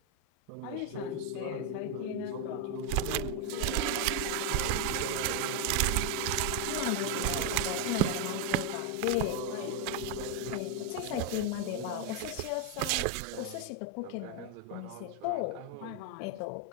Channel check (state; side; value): different; both; correlation 0.01